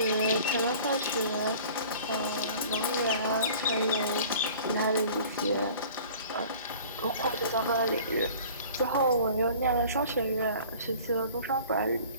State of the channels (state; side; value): inverted; both; correlation -0.46